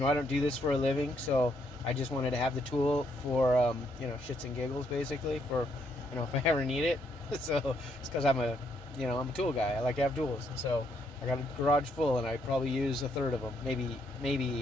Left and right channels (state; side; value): normal; both; correlation 0.73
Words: I don't do this for a living. So I just wanted to have the tool for, you know, shits and giggles, basically, for, you know, if I ever need it. So it's because I'm a tool guy. I like to have tools. So I got a garage full, and I probably use a third of them,